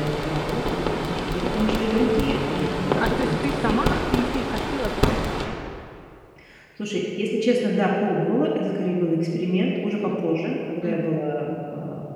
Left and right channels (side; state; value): both; identical; correlation 1.00